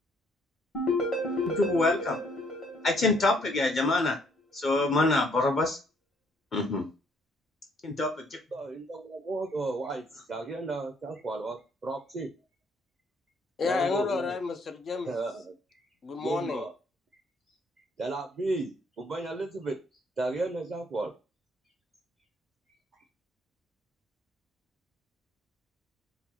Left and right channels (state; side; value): normal; both; correlation 0.66